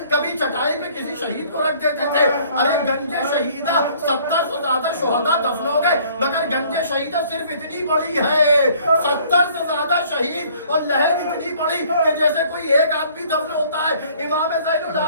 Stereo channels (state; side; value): inverted; both; correlation -0.57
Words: کبھی چٹائی پہ کسی شہید کو رکھ دیتے تھے. ارے گنج شہیدہ 70 سے زیادہ شہداء دفن ہو گئے, مگر گنج شہیدہ صرف اتنی بڑی ہے, 70 سے زیادہ شہید, اور لہر اتنی بڑی کہ جیسے کوئی ایک آدمی دفن ہوتا ہے. امام زین